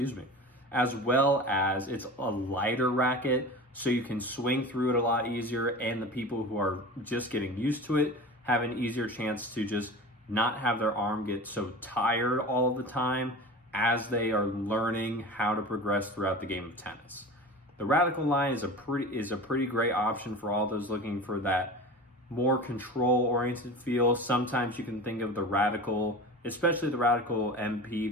me, as well as it's a lighter racket, so you can swing through it a lot easier, and the people who are just getting used to it have an easier chance to just not have their arm get so tired all the time as they are learning how to progress throughout the game of tennis. The radical line is a pretty great option for all those looking for that more control-oriented feel. Sometimes you can think of the Radical, especially the Radical MP,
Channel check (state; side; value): normal; both; correlation 0.34